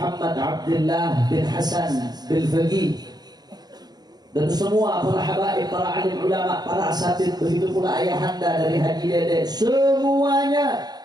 Abdullah bin Hasan bin Faqih, dan semua para habaib, para alim ulama, para asatid, begitu pula ayahanda dari Haji Dede, semuanya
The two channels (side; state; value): left; late; 0.19 ms